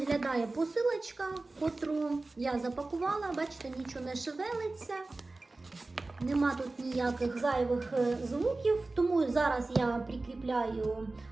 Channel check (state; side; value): quieter; left; 3.2 dB